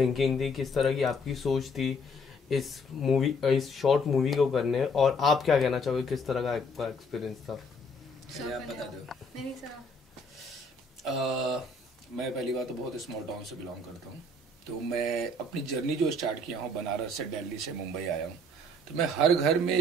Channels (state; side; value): normal; both; correlation 0.62